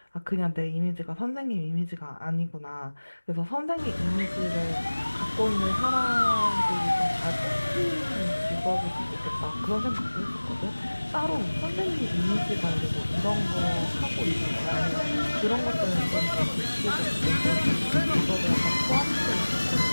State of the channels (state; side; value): inverted; both; correlation -1.00